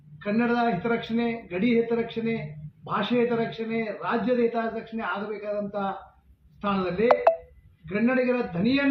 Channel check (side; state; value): both; identical; correlation 1.00